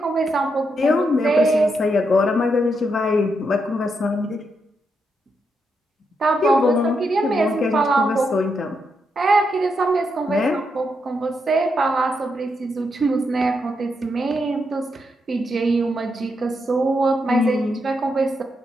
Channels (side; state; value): both; normal; correlation 0.82